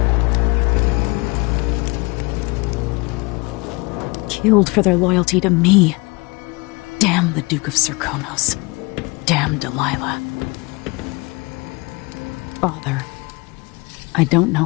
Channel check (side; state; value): right; quieter; 26.2 dB